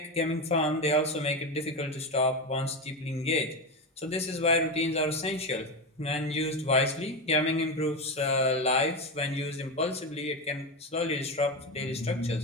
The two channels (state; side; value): normal; both; correlation 0.16